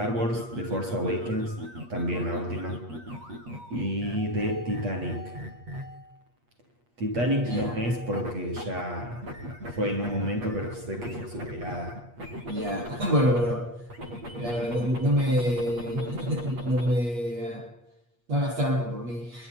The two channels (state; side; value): late; left; 8.4 ms